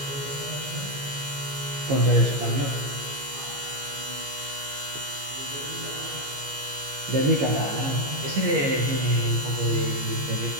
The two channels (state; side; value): late; left; 15 ms